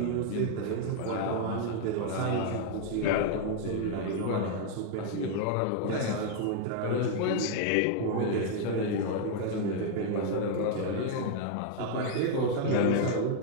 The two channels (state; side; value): different; both; correlation 0.00